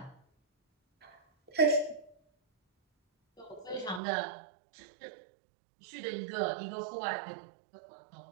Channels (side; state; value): left; drops out; at 4.0 s